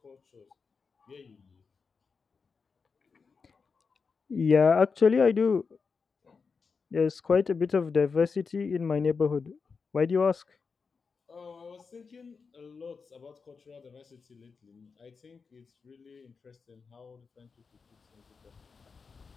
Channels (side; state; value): right; quieter; 5.1 dB